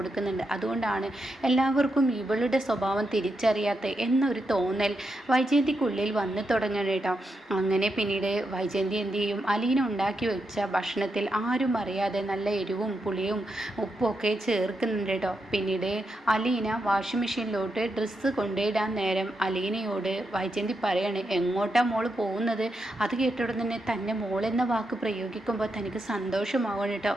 അതുകൊണ്ടാണ് എല്ലാവർക്കും ഇവളുടെ സ്വഭാവം തിരിച്ചറിയാത്ത എന്നൊരു തോന്നൽ വൈജയന്തിക്കുള്ളിൽ വന്നു തുടങ്ങണം കേട്ടോ. അങ്ങനെ പിന്നീട് വൈജയന്തി എന്ത് ചെയ്യും, അലീന ഉണ്ടാക്കി വെച്ച ഭക്ഷണത്തിൽ ആരും അറിയാതെ നല്ല എരിവും പുളിയും ഉപ്പും ഒക്കെ ചേർക്കുന്നുണ്ട് കേട്ടോ. പിന്നീട് അലീന വാഷിംഗ് മെഷീനിലോട്ട് ഡ്രസ്സ് കൊണ്ടിടാൻ നേരം അലീനയോട് വൈജയന്തി പറയാണ്, എങ്ങോട്ടാ മോള് പോകുന്നത്? അത് കേട്ടോടെ തന്നെ തന്നെ മോളെന്ന വാക്ക് പ്രയോഗിക്കുമ്പോൾ തനിക്ക് സന്തോഷമാവണം കേട്ടോ.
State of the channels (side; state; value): both; normal; correlation 0.84